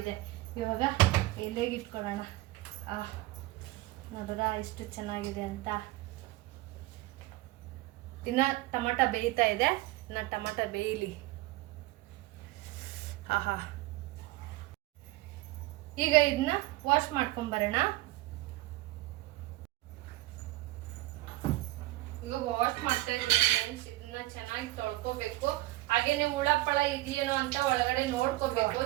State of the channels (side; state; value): left; quieter; 19.0 dB